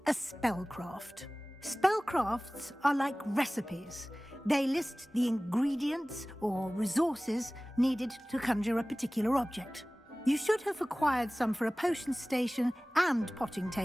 a spellcraft. Spellcrafts are like recipes. They list the ingredients or resources needed to conjure a particular object. You should have acquired some for a potion station and potting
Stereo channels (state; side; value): normal; both; correlation 0.98